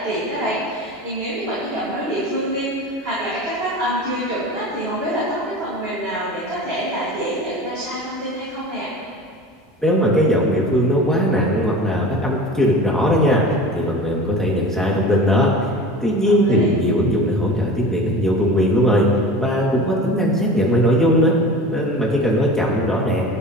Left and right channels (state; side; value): normal; both; correlation 0.36